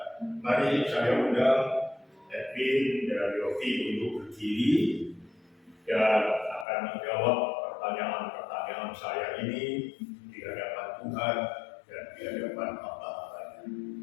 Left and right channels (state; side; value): drops out; right; at 6.7 s